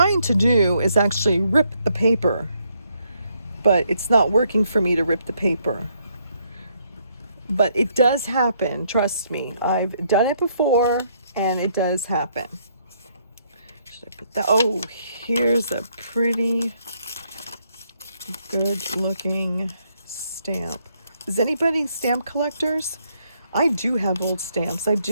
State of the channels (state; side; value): inverted; both; correlation -0.72